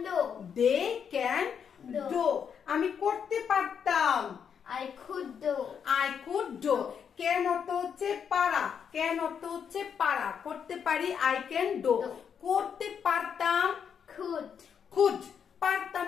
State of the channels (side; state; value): right; quieter; 7.4 dB